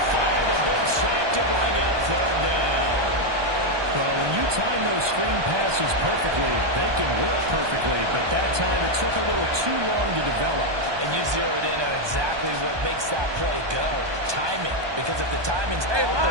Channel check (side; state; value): left; late; 1.2 ms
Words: 5. A big sack to bring up third down. Well, when you time those screen passes perfectly, they can work perfectly. But that time, it took a little too long to develop. And you zeroed in on exactly what makes that play go. Timing. Because if the timing's off,